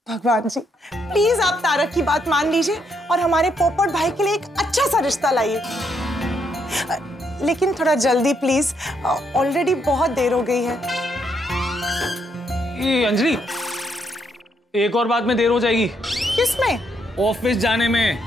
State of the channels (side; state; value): both; normal; correlation 0.75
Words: भगवान जी, प्लीज आप तारक की बात मान लीजिए और हमारे पोपट भाई के लिए एक अच्छा सा रिश्ता लाइए, लेकिन थोड़ा जल्दी प्लीज, ऑलरेडी बहुत देर हो गई है। ये अंजलि, एक और बात में देर हो जाएगी। किसमें? ऑफिस जाने